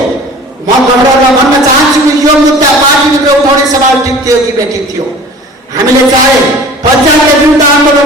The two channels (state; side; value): normal; both; correlation 0.43